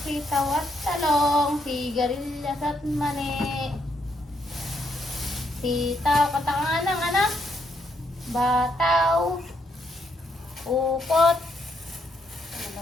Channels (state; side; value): normal; both; correlation 0.76